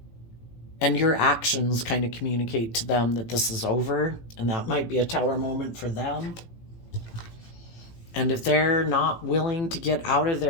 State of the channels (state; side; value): late; right; 18 ms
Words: And your actions kind of communicate to them that this is over, and that might be a tower moment for them. And if they're not willing to get out of